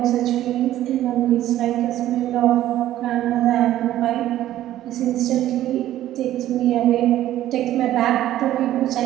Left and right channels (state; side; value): quieter; left; 13.3 dB